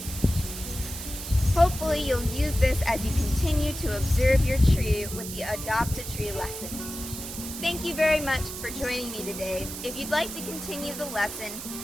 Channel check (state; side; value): noise; right; hiss, 9 dB below the sound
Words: Hopefully you'll use this as you continue to observe your tree with the Adopt a Tree lesson. Thank you very much for joining me today. If you'd like to continue the lesson,